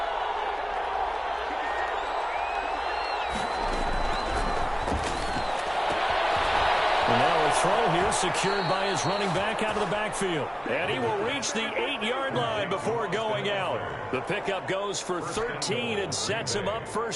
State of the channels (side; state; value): both; identical; correlation 1.00